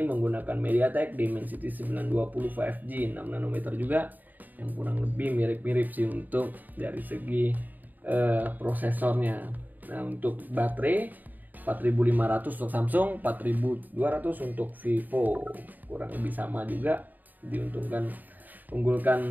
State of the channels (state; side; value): late; left; 0.085 ms